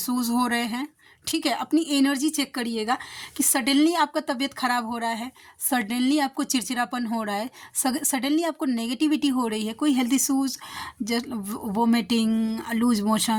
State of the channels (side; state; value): both; identical; correlation 1.00